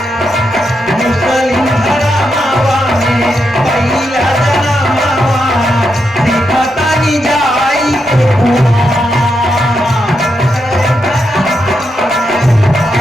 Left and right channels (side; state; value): both; normal; correlation 0.84